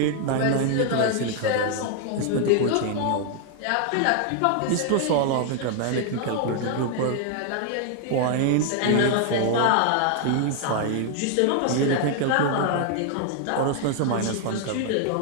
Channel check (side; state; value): both; different; correlation 0.00